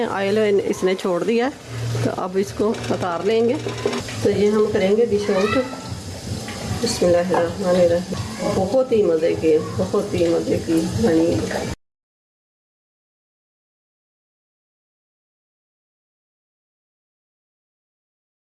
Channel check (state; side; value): identical; both; correlation 1.00